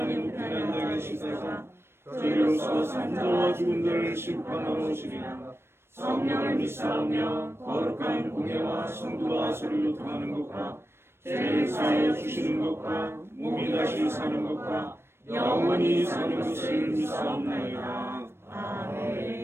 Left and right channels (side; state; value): left; late; 0.12 ms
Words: 우편에 앉아 계시다가 저희로서 산자와 죽은 자를 심판하러 오시리라. 성령을 믿사오며 거룩한 공예와 성도와 서로 교통하는 것과 죄를 사하여 주시는 것과 몸이 다시 사는 것과 영원히 사는 것을 믿사옵나이다.